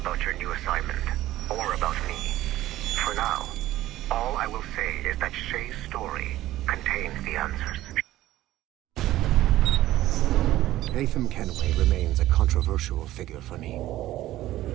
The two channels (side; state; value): left; quieter; 15.1 dB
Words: your new assignment, or about me. For now, all I will say is that Shay's story contains the answers. Haytham Kenway remains a controversial figure for me.